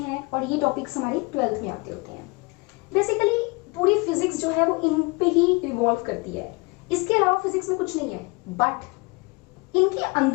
और ये टॉपिक्स हमारे 12th में आते होते हैं। बेसिकली पूरी फिजिक्स जो है वो इन पे ही रिवॉल्व करती है, इसके अलावा फिजिक्स में कुछ नहीं है। बट इनके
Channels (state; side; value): quieter; right; 27.2 dB